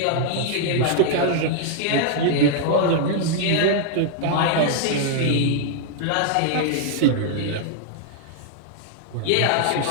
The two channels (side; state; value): both; different; correlation 0.00